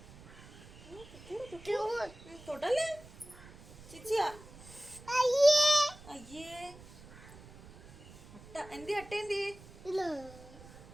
തൊടല്ലേ ചിച്ചിയാ. അയ്യേ അട്ട എന്തി, അട്ട എന്തി?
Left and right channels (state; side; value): noise; right; rumble, 19 dB below the sound